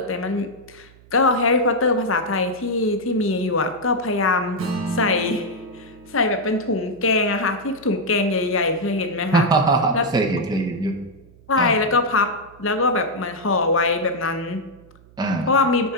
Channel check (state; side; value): noise; right; hum, 26 dB below the sound